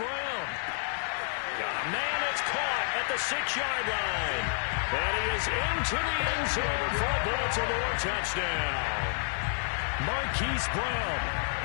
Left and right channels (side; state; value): right; silent; 58 dB below the other